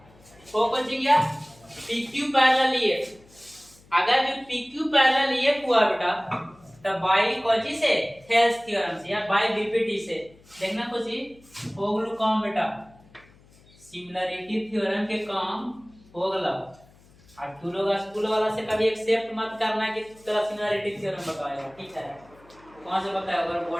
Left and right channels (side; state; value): left; noise; hum, 27 dB below the sound